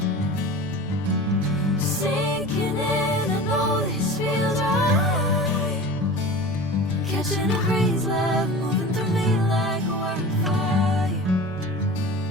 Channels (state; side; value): normal; both; correlation 0.35